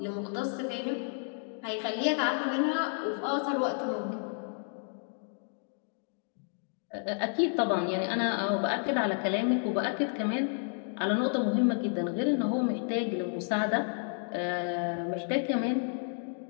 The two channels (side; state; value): right; silent; 57 dB below the other